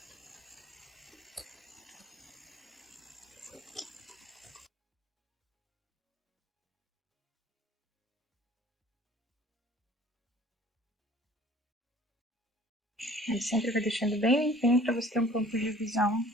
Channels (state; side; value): normal; both; correlation 0.51